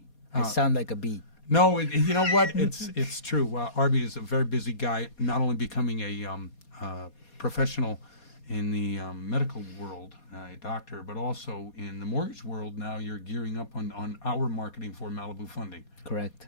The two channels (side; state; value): right; late; 4.2 ms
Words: I sound like a bee. No, you know what? It's true. Arby is a very busy guy, not only becoming a professional in the medical world, a doctor, but also in the mortgage world. Now you're gearing up on our marketing for Malibu Funding. Correct.